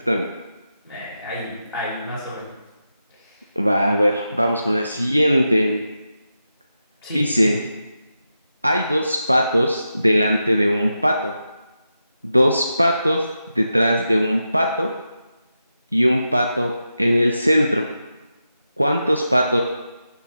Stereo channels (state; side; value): inverted; both; correlation -0.89